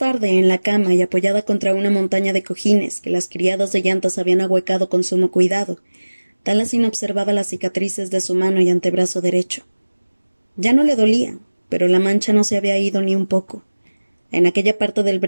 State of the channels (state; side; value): inverted; both; correlation -1.00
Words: en la cama y apoyada contra una montaña de cojines que las criadas de llantas habían ahuecado con sumo cuidado, Taliesin observaba las cicatrices de su mano y antebrazo derecho. Ya no le dolía, pero la mancha no se había ido ni un poco. En aquella parte del